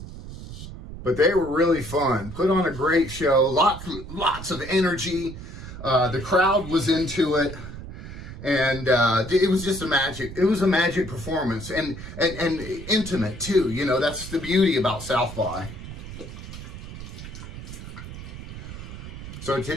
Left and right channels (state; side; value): noise; right; rumble, 11 dB below the sound